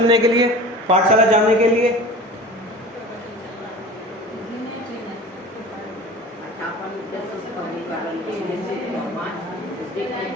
के लिए, पाठशाला जाने के लिए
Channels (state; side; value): normal; both; correlation 0.38